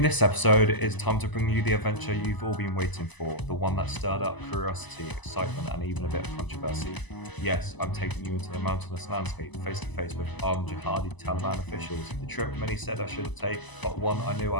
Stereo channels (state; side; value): late; right; 1.0 ms